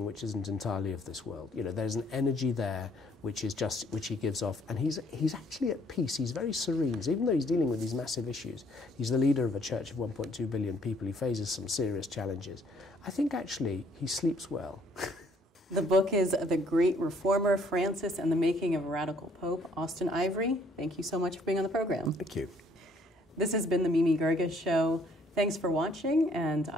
which isn't entirely of this world. You know, there's an energy there which he gives off, and he's actually at peace. He's very serene. Even though he's dealing with these massive issues, he's the leader of a church of 1.2 billion people. He faces some serious challenges. I think actually he sleeps well. The book is The Great Reformer, Francis and the Making of a Radical Pope. Austen Ivereigh, thank you so much for being on the program. Thank you. This has been the Mimi Geerges Show. Thanks for watching, and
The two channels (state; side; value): normal; both; correlation 0.63